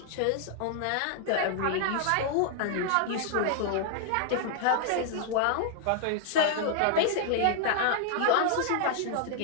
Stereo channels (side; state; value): both; different; correlation 0.00